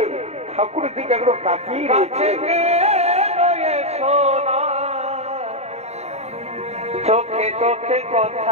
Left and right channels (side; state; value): left; late; 0.31 ms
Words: দিকে একদম তাকিয়ে রয়েছে। চোখে চোখে